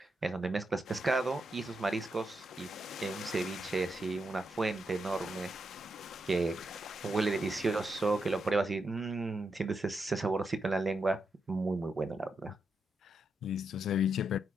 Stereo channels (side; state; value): both; normal; correlation 0.83